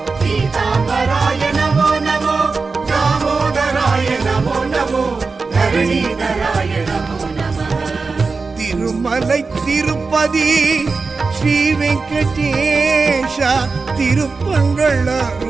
गीताम्बराय नमो नमो दामोदराय नमो नमो धरणीधराय नमो नमः திருமலை திருப்பதி ஸ்ரீ வெங்கடேஷா திருப்பங்கள்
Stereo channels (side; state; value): left; quieter; 4.3 dB